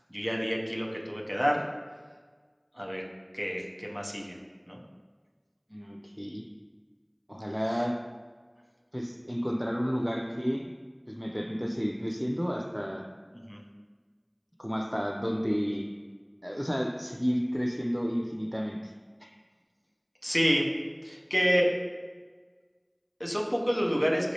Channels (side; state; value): both; identical; correlation 1.00